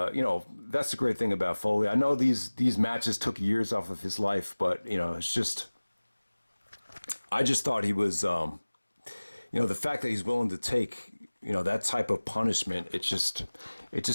that's the great thing about Foley. I know these matches took years off of his life, but, it's just, I just thought he was, the fact that he's willing to take, that type of punishment, it just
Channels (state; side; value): inverted; both; correlation -1.00